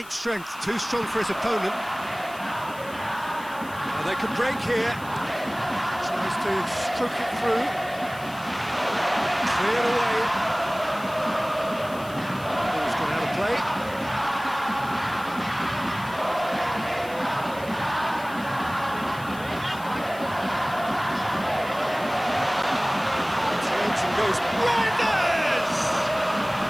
strength, too strong for his opponent. And they can break here. Tries to stroke it through. Cleared away. Ball's gone out of play. Goes Reinders!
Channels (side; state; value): left; noise; hiss, 20 dB below the sound